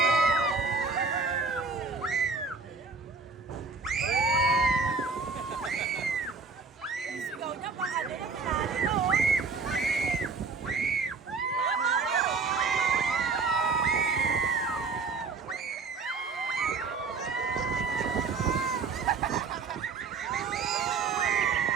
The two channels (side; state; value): left; quieter; 4.4 dB